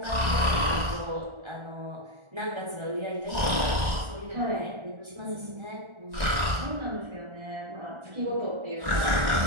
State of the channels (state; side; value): late; left; 1.3 ms